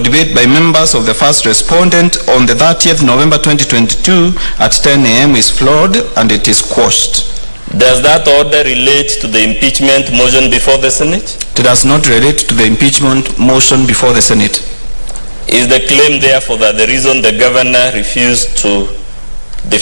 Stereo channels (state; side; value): inverted; both; correlation -1.00